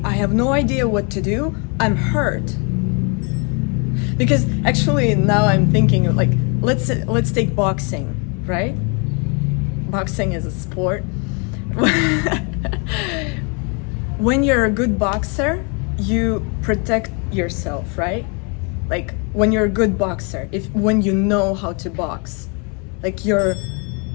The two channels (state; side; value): quieter; right; 34.6 dB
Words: have no idea what to do. I'm hurt. Because actually now I'm thinking, like, let's take boxing, right? Boxing is a sport. When you're a good boxer, you protect yourself, right? Like when you're a good boxer, when you know how to box, like